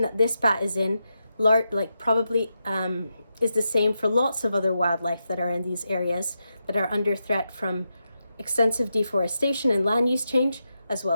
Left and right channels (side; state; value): both; inverted; correlation -0.87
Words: that this bat is in probably is the same for lots of other wildlife that are in these areas that are under threat from extensive deforestation and land use change, as